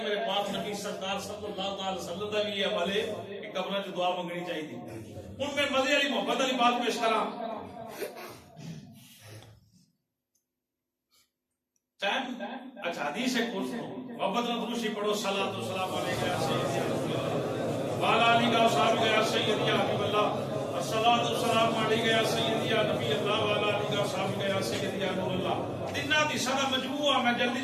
میرے پاک نبی سرکار صلی اللہ علیہ وسلم کا بھی یہ عمل ہے کہ قبر چ دعا منگنی چاہیے. ہن میں مزے والی محبت والی بات پیش کراں. اچھا حدیث ہے کچھ محبت نبوسی پڑھو صلاۃ و سلام علیک یا سیدی وعلی آلہ و صحبہ یا سیدی یا حبیب اللہ الصلاۃ والسلام علیک یا سیدی یا نبی اللہ وعلی آلہ و صحبہ یا سیدی یا نور اللہ. تیناں دی سارا مجموعہ میں جلدی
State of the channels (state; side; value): identical; both; correlation 1.00